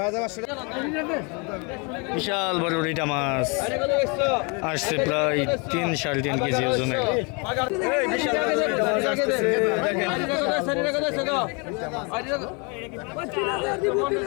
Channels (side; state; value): right; quieter; 32.1 dB